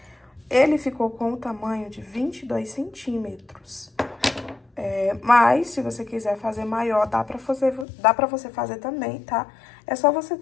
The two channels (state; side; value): drops out; right; at 7.9 s